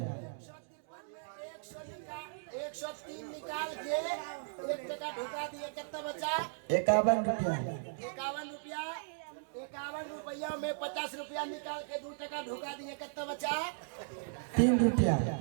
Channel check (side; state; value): left; silent; digital silence